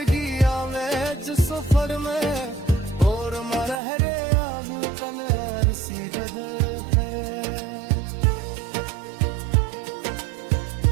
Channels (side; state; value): left; drops out; at 3.8 s